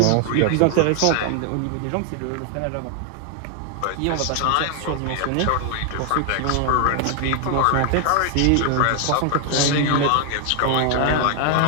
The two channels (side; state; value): both; different; correlation 0.00